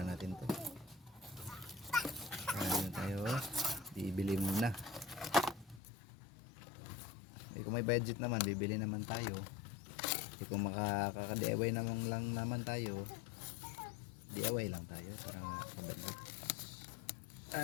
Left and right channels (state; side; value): drops out; right; at 5.8 s